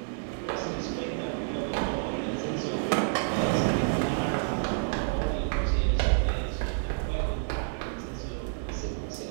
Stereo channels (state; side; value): silent; left; digital silence